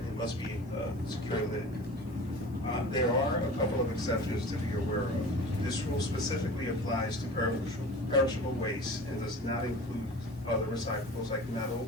must be a secure lid. There are a couple of exceptions to be aware of. This rule specifically applies to perishable waste and does not include other recyclables like metal,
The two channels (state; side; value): noise; right; hiss, 28 dB below the sound